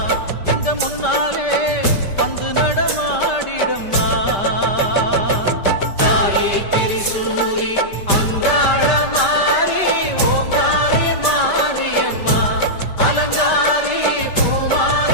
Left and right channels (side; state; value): right; late; 5.1 ms